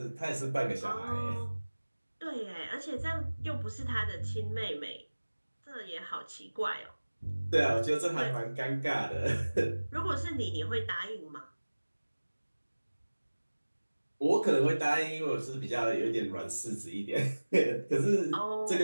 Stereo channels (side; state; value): both; inverted; correlation -1.00